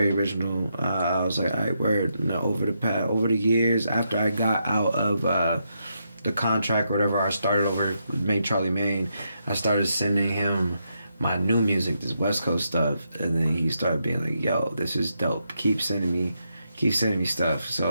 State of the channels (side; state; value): both; inverted; correlation -0.81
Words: original. I was like, alright, word. And over the years, after I got out of the contract or whatever, I started over with Charlie Mayne. I started sending him my new music, this West Coast stuff, and then he started being like, yo, this is dope. Keep sending me stuff.